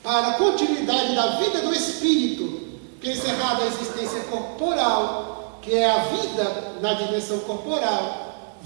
para a continuidade da vida do espírito, que encerrada a existência corporal, que é a vida na dimensão corporal,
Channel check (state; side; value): silent; left; digital silence